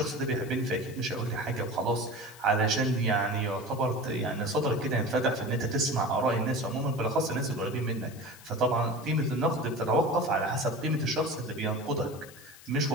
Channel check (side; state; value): left; noise; hiss, 20 dB below the sound